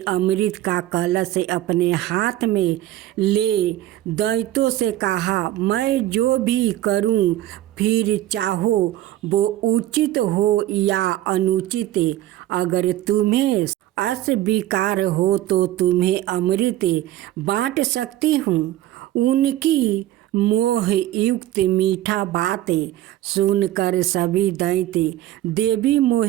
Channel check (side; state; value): left; quieter; 14.4 dB